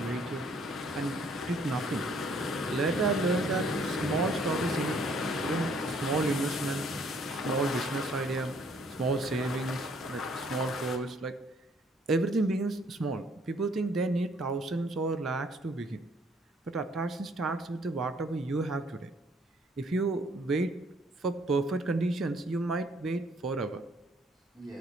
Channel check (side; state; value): both; normal; correlation 0.63